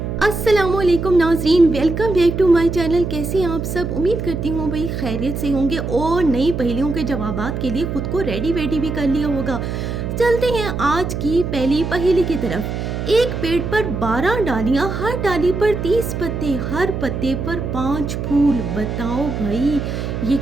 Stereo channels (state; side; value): noise; right; hum, 4 dB below the sound